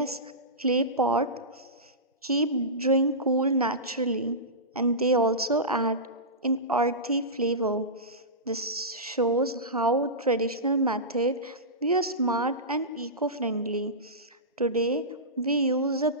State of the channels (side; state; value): both; normal; correlation -0.18